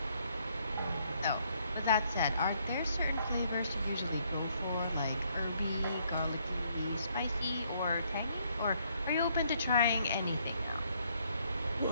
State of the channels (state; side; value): inverted; both; correlation -0.69